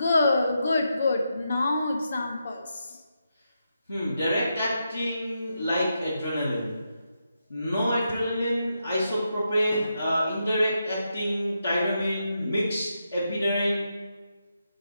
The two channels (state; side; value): inverted; both; correlation -0.84